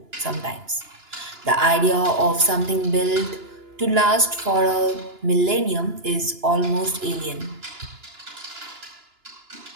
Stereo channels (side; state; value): left; late; 2.9 ms